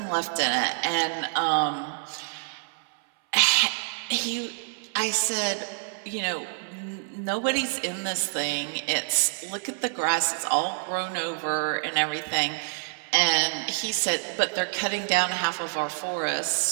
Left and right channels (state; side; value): silent; left; 60 dB below the other